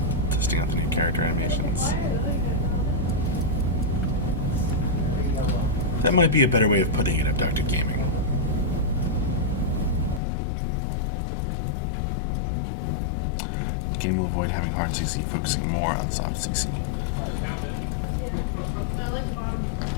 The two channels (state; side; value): drops out; right; at 10.2 s